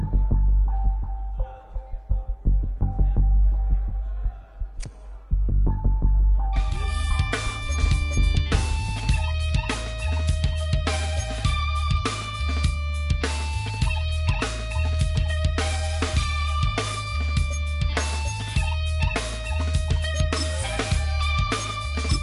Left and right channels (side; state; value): both; identical; correlation 1.00